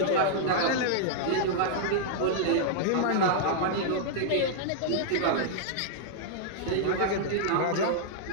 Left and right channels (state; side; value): different; both; correlation -0.01